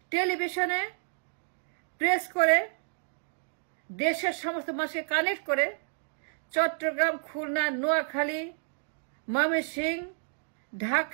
টেলিভিশনে প্রেস করে দেশের সমস্ত মানুষকে কানেক্ট করে চট্টগ্রাম, খুলনা, নোয়াখালী, ময়মনসিংহ,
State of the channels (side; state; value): left; silent; digital silence